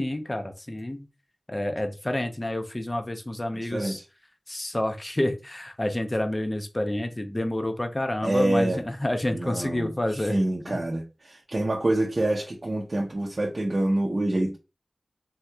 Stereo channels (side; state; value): both; normal; correlation 0.98